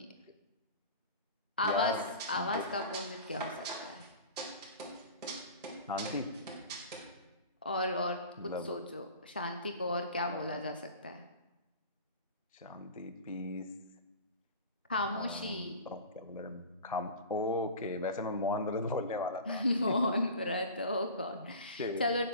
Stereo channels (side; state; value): both; inverted; correlation -0.37